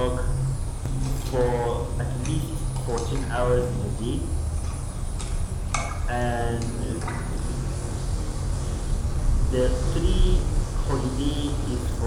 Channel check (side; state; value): both; identical; correlation 1.00